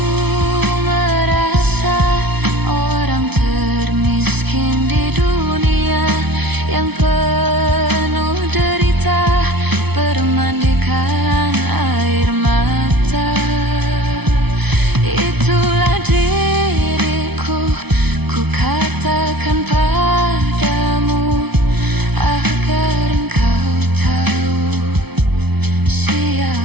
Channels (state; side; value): late; left; 0.99 ms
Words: merasa orang termiskin di dunia, yang penuh derita bermandikan air mata. Itulah diriku, ku katakan padamu agar engkau tahu